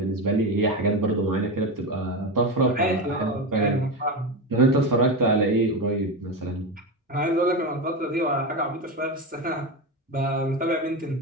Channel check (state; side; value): normal; both; correlation 0.17